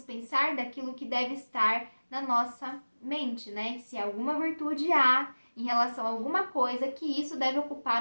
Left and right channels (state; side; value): inverted; both; correlation -1.00